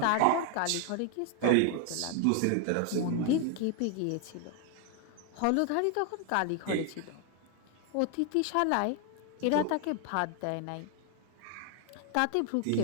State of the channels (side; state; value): both; different; correlation 0.01